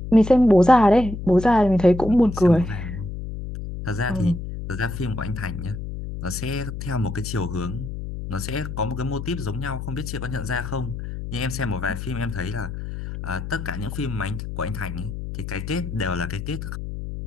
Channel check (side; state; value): left; noise; hum, 7 dB below the sound